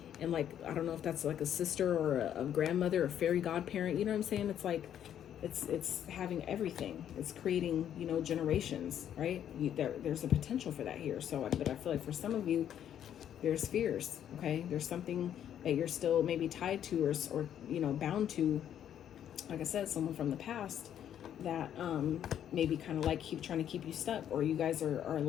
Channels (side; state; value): right; quieter; 10.0 dB